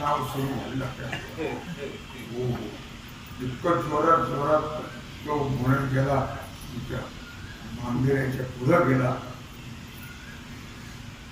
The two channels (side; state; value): both; identical; correlation 1.00